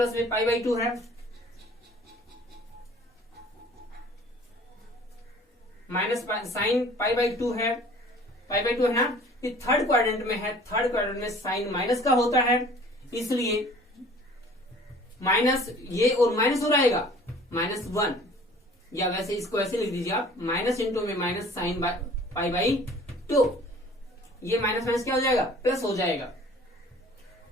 में पाई बाई 2 है, माइनस साइन पाई बाई 2 है, पाई बाई 2 है ना। ये थर्ड क्वाड्रेंट में है, थर्ड क्वाड्रेंट में साइन माइनस का होता है, इसलिए माइनस ये और माइनस हो रहेगा -1, या वैसे इसको ऐसे लिख दीजिए आप, माइनस इंटू में माइनस साइन पाई बाई 2, ये माइनस माइनस क्या हो जाएगा, प्लस हो जाएगा।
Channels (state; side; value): normal; both; correlation 0.50